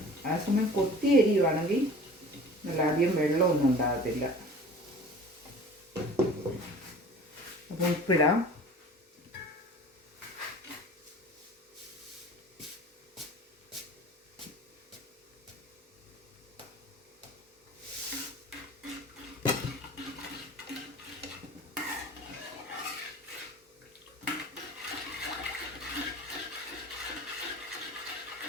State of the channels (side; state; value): both; normal; correlation 0.43